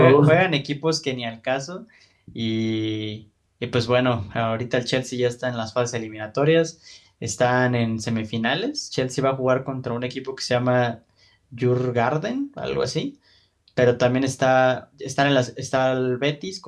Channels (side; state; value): both; identical; correlation 1.00